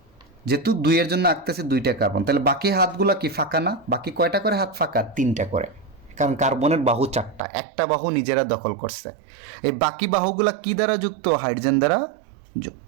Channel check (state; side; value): drops out; left; at 7.4 s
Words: যেহেতু 2 এর জন্য আঁকতেছে 2টা কার্বন, তাহলে বাকি হাতগুলো কি ফাঁকা না? বাকি কয়টা করে হাত ফাঁকা? 3টা করে, কারণ কার্বনের বাহু 4টা, একটা বাহু নিজেরা দখল করছে। এই বাকি বাহুগুলা কি দ্বারা যুক্ত? হাইড্রোজেন দ্বারা